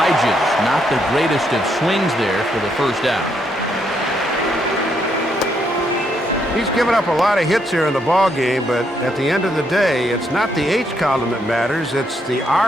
Not the greatest of swings there for the first out. He's given up a lot of hits here in the ball game, but at the end of the day, it's not the H column that matters, it's the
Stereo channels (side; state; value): both; normal; correlation 0.75